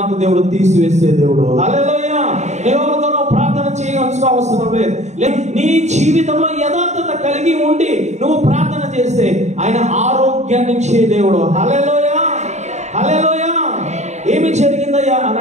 దేవుడు తీసివేసే దేవుడు. హల్లెలూయా. దేవుడితో ప్రార్థన చేయవలసిన అవసరం లేదు. నీ జీవితంలో యథార్థత కలిగి ఉండి నువ్వు ప్రార్థన చేస్తే ఆయన ఆరోగ్యాన్ని ఇచ్చే దేవుడు. హల్లెలూయా. హల్లెలూయా. ఏమి జరిగిందయ్యా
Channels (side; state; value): left; late; 0.33 ms